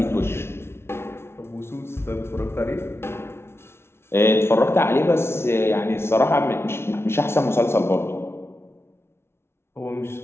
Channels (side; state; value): right; late; 0.12 ms